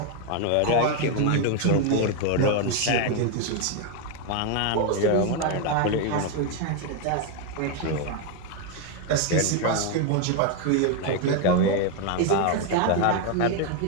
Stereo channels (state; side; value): different; both; correlation 0.01